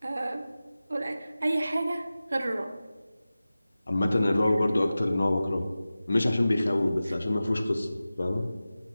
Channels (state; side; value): inverted; both; correlation -0.96